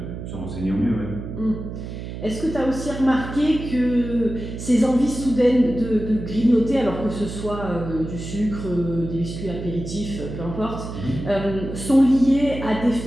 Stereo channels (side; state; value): right; noise; hum, 8 dB below the sound